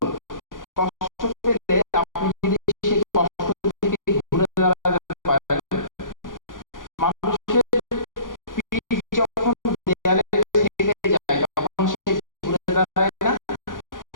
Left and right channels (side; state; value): right; late; 0.89 ms